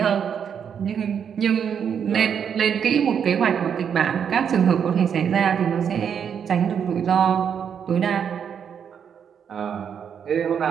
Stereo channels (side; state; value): left; quieter; 7.7 dB